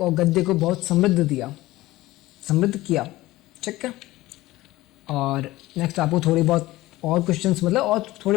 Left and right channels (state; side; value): quieter; right; 17.9 dB